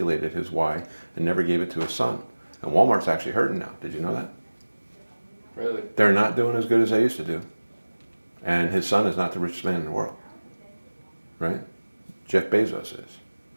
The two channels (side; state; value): both; inverted; correlation -1.00